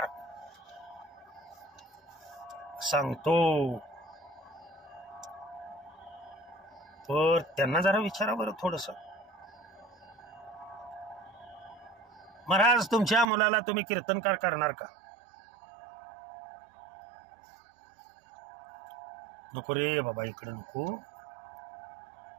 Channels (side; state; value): left; drops out; at 13.2 s